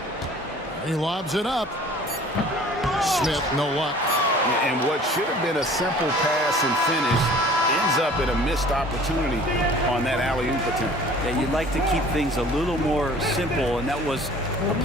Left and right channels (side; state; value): both; normal; correlation 0.48